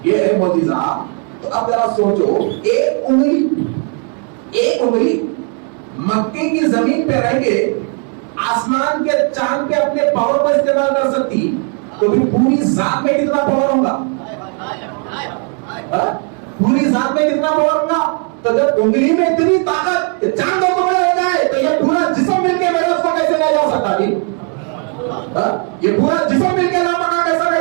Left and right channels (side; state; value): left; quieter; 39.7 dB